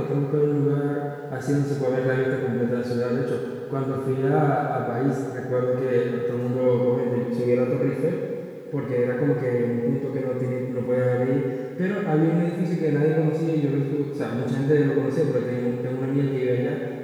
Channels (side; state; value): both; identical; correlation 1.00